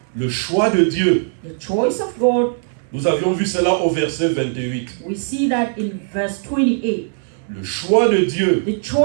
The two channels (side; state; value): left; silent; digital silence